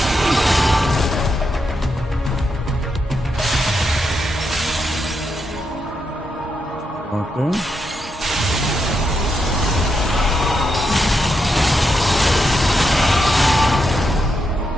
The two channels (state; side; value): normal; both; correlation 0.83